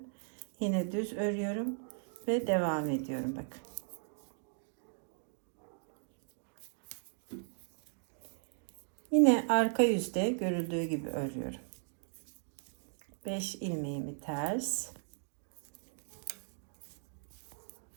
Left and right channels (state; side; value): silent; left; digital silence